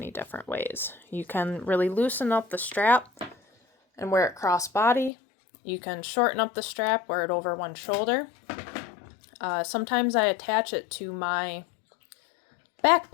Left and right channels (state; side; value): drops out; right; at 5.1 s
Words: different ways. You can really loosen up the strap and wear it cross-body. You can shorten up the strap, wear it over one shoulder. Sometimes I attach it to my